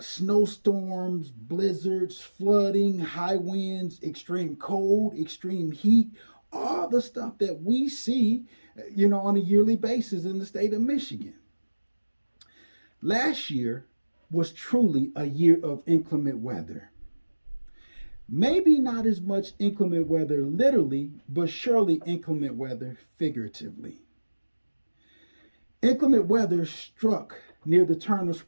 snowstorms, blizzards, flooding, high winds, extreme cold, extreme heat, all the stuff that we see, on a yearly basis in the state of Michigan. Last year was truly a year of inclement weather. Maybe not as much inclement weather literally, but surely inclement weather figuratively. Inclement weather struck near the turn of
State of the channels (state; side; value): inverted; both; correlation -1.00